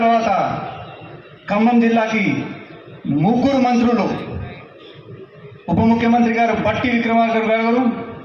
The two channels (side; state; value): both; identical; correlation 1.00